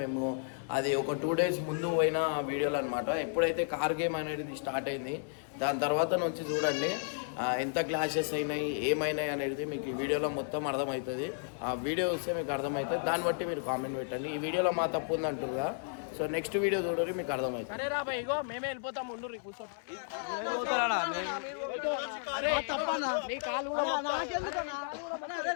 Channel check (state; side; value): silent; right; 56 dB below the other